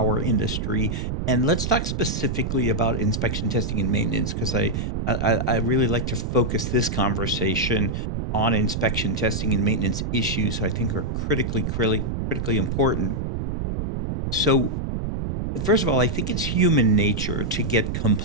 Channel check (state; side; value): noise; right; rumble, 2 dB below the sound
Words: industry, and let's talk specifically about inspection, testing, and maintenance, because I really like to focus this conversation on inspection, testing, and maintenance issues I think are critically important. So first of all, I think it's human nature to get